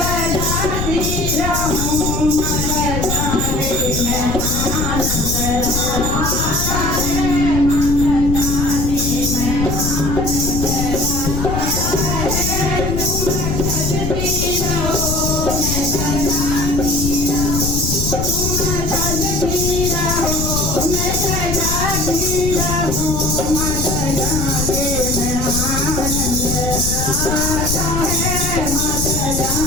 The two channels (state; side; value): noise; left; rumble, 2 dB below the sound